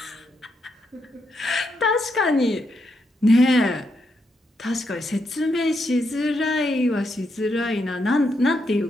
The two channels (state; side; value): normal; both; correlation 0.80